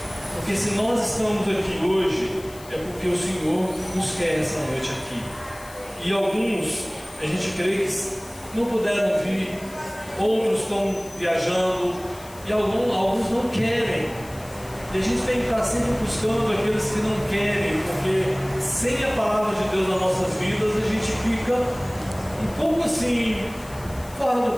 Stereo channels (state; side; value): noise; left; hiss, 20 dB below the sound